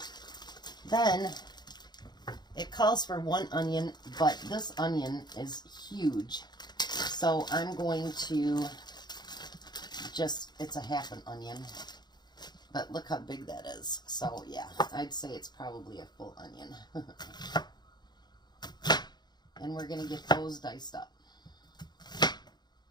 Then it calls for 1 onion, but this onion is huge. So I'm going to it's a half an onion. But look how big that is. So yeah, I'd say it's probably a full onion. And we're going to get those diced up.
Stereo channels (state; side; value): late; right; 0.21 ms